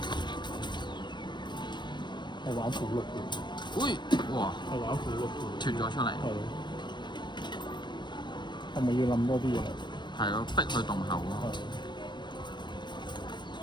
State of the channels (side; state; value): right; late; 0.22 ms